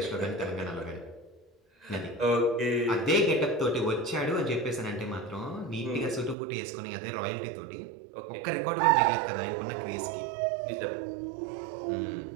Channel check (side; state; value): left; drops out; at 6.4 s